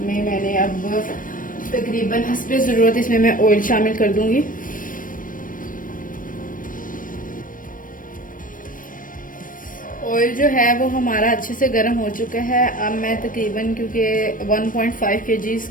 मैंने अब तकरीबन हस्बे ज़रूरत इसमें मैं ऑयल शामिल कर दूंगी। ऑयल जो है वो हमारा अच्छे से गर्म हो चुका है। अब मैं तकरीबन, क्योंकि 1.5 kg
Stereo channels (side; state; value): right; late; 0.40 ms